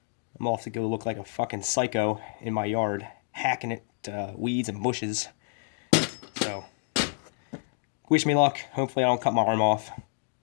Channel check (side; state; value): right; silent; digital silence